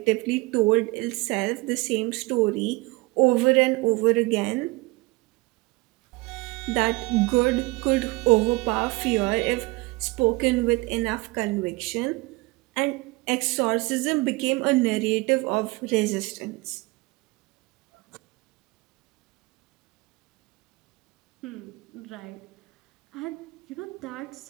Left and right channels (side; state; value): left; quieter; 23.6 dB